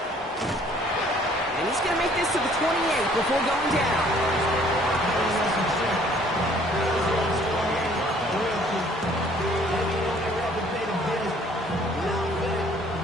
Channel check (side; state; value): both; normal; correlation 0.58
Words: And he's going to make this to the 28 before going down.